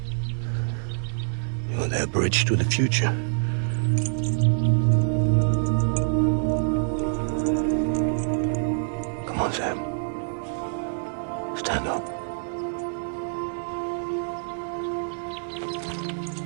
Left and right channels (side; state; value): left; silent; digital silence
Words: You're their bridge to the future. Come on, Sam. Stand up.